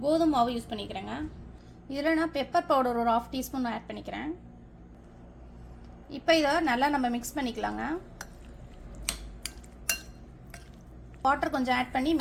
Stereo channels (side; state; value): both; identical; correlation 1.00